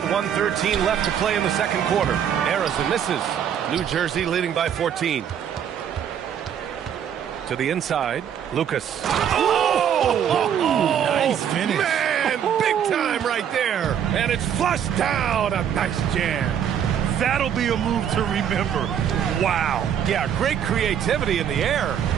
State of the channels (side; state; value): left; quieter; 8.9 dB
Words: 1:13 left to play in the second quarter. Harrison misses. New Jersey leading by 14. To the inside, Lucas. Oh! Nice finish. Man, big time right there. And it's flushed down. A nice jam. That'll be a move to remember. Wow. Yeah, great creativity in the air.